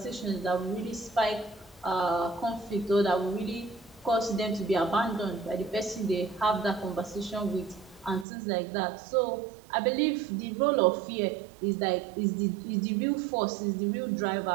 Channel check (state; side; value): drops out; left; at 8.2 s